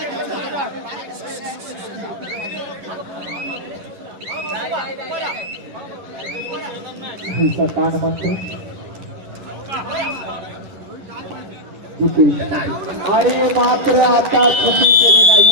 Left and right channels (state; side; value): late; left; 11 ms